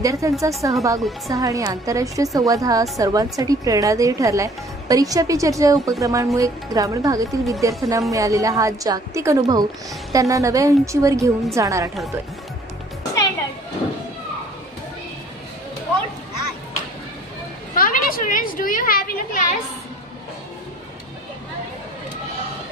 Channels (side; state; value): both; normal; correlation 0.55